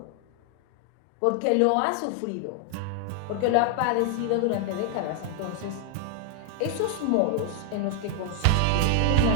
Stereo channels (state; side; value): different; both; correlation 0.00